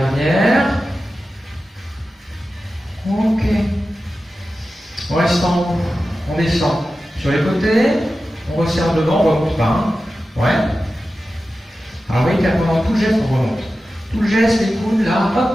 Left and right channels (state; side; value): normal; both; correlation 0.93